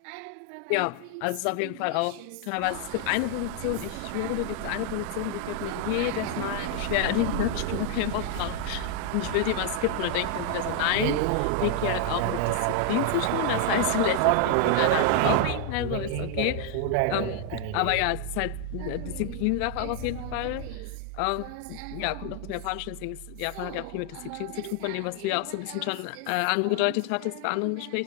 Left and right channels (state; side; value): different; both; correlation 0.00